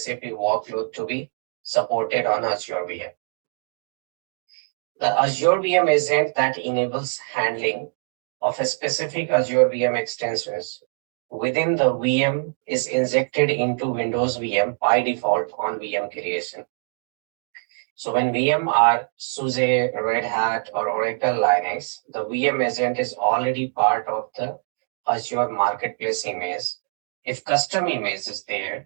workload to be supported on Azure VM. The Azure VM agent that enables handling of a specific Azure VM extensions within the VM is injected into Windows VM by default on VM creation. So when VM are SUSE, Red Hat, or Oracle Linux, the VM agent is already part of the Azure Marketplace image. If custom image is there,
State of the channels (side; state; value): left; silent; digital silence